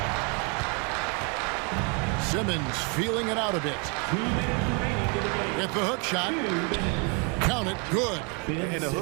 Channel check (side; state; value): left; quieter; 34.8 dB